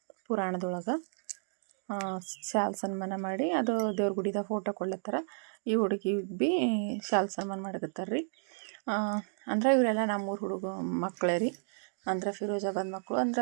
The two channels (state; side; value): silent; left; digital silence